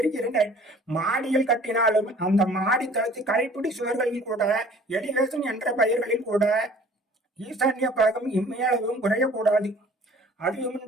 மாடியில் கட்டினாலும் அந்த மாடி தளத்து கைப்பிடி சுவர்களில் கூட, எலிவேஷன் என்ற பெயர்களில் கூட ஈசான்ய பாகம் இம்மையளவும் குறையக்கூடாது.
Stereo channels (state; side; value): normal; both; correlation 0.51